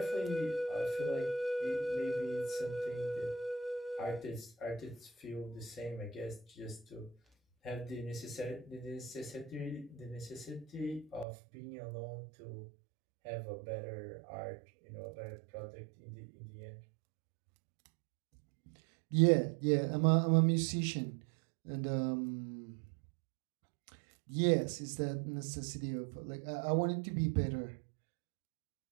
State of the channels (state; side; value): drops out; left; at 11.2 s